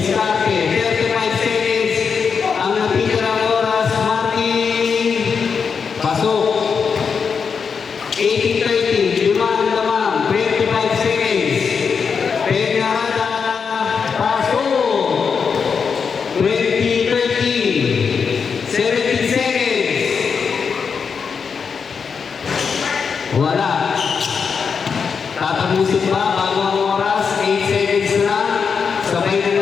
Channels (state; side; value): quieter; right; 6.0 dB